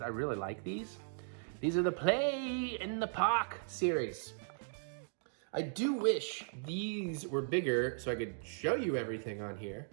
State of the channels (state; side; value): silent; left; digital silence